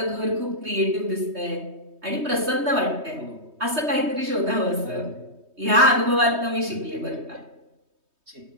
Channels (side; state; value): left; late; 3.2 ms